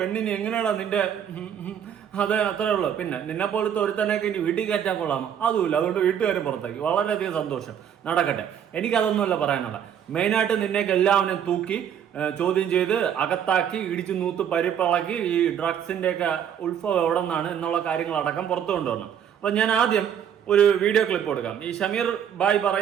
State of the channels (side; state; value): left; quieter; 8.9 dB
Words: എങ്ങനെയാണോ നിന്റെ അതെ അത്രേ ഉള്ളൂ. പിന്നെ നിന്നെ പോലത്തെ ഒരുത്തനൊക്കെ ഇനി വീട്ടിൽ കയറ്റാൻ കൊള്ളാമോ? അതുമില്ല. അതുകൊണ്ട് വീട്ടുകാരും പുറത്താക്കി. വളരെയധികം സന്തോഷം, നടക്കട്ടെ. എനിക്കതൊന്നുമല്ല പറയാനുള്ള. മെയിനായിട്ട് നിന്നേക്ക് എല്ലാവരും തൂക്കി ചോദ്യം ചെയ്ത് അകത്താക്കി ഇടിച്ചു നൂത്ത് പരിപ്പിളക്കി ഈ ഡ്രഗ്സിന്റെ ഒക്കെ ഉത്ഭവം എവിടെ നിന്നാണ് എന്നുള്ള കാര്യങ്ങളടക്കം പുറത്തു കൊണ്ടുവരണം. അപ്പൊ ഞാൻ ആദ്യം ഒരു വീഡിയോ ക്ലിപ്പ് കൊടുക്കാം. ഈ ഷമീർ ബായ്